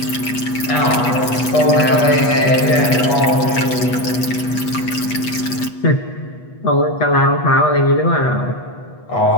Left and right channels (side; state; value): right; late; 8.2 ms